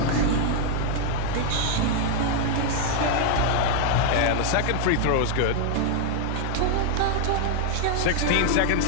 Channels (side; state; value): both; different; correlation 0.00